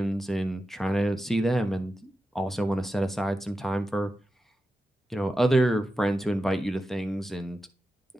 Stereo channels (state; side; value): normal; both; correlation 0.91